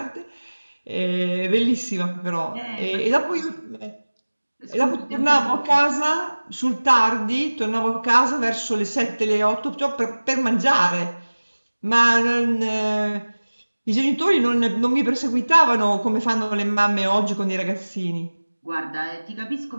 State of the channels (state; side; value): inverted; both; correlation -1.00